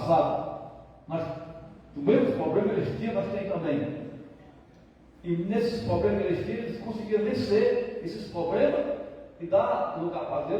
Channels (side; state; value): both; identical; correlation 1.00